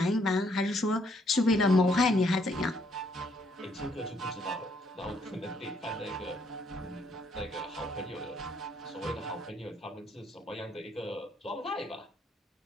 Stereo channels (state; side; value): normal; both; correlation 0.70